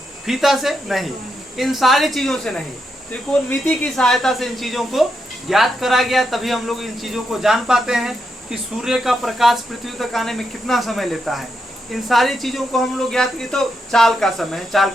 फीता से नहीं, इन सारी चीजों से नहीं, त्रिकोणमिति की सहायता से इन चीजों को ज्ञात करा गया। तभी हम लोग इन चीजों को जान पाते हैं कि सूर्य का प्रकाश पृथ्वी तक आने में कितना समय लेता है। इन सारी चीजों को हम लोग ज्ञात की। तो चाल का समय है, चाल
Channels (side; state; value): both; normal; correlation 0.83